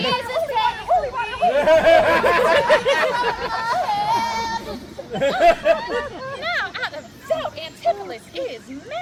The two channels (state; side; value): identical; both; correlation 1.00